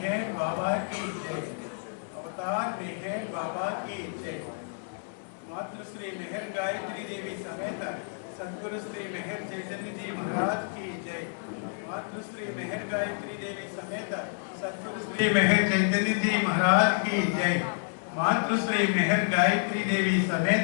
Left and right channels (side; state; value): right; silent; digital silence